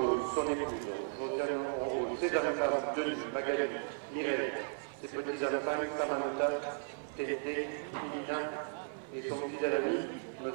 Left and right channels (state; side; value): silent; left; 54 dB below the other